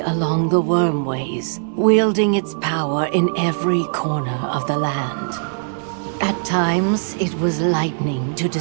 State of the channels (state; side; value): silent; left; digital silence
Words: along the Wormways, wielding its power in every corner of the land. At times, it was lightning to